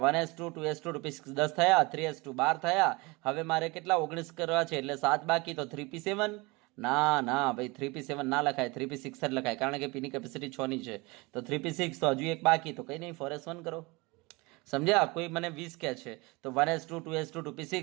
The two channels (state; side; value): quieter; left; 25.1 dB